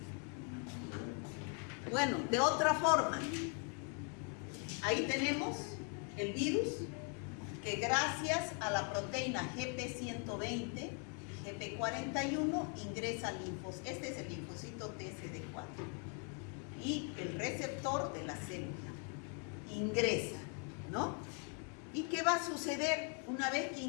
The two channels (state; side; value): quieter; right; 39.9 dB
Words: Bueno, de otra forma, ahí tenemos el virus que gracias a la proteína GP120 y GP41 ingresa al linfocito. Este es el linfocito TCD4 y el receptor de la célula ingresa, ¿no? ¿Y qué va a suceder una vez que